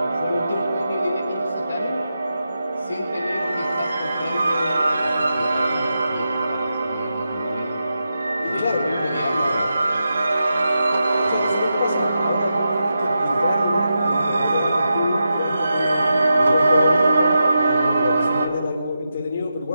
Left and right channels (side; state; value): both; inverted; correlation -0.88